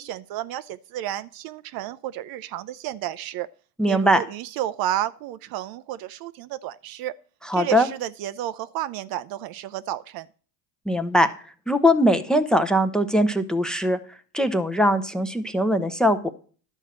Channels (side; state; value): both; normal; correlation 0.64